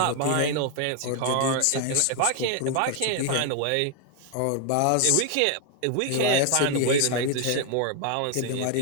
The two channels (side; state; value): both; different; correlation 0.00